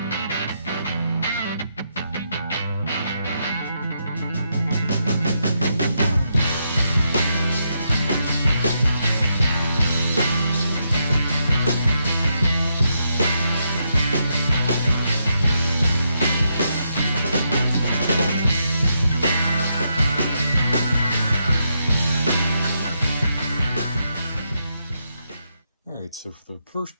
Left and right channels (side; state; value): both; inverted; correlation -0.81